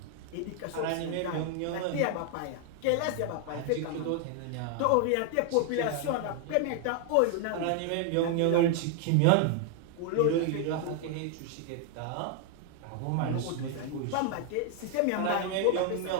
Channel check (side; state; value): both; different; correlation 0.00